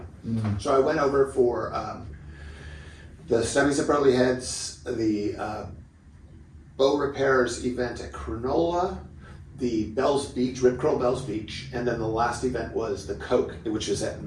Mm-hmm. So I went over for the Stubbies at Burley Heads, the bow repairs event at Cronulla, the Bells Beach, Rip Curl Bells Beach, and then the last event was the Coke, which was at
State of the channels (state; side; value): identical; both; correlation 1.00